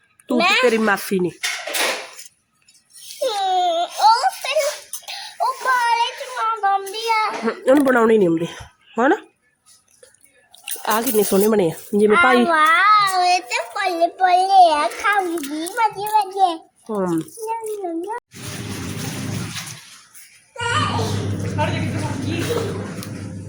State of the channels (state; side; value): identical; both; correlation 1.00